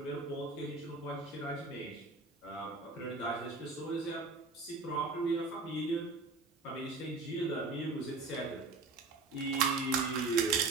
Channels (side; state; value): left; quieter; 3.7 dB